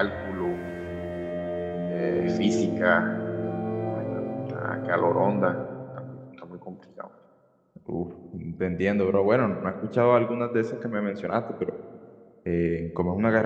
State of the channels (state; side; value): identical; both; correlation 1.00